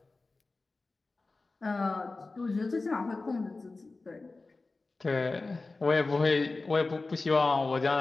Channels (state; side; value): quieter; right; 3.5 dB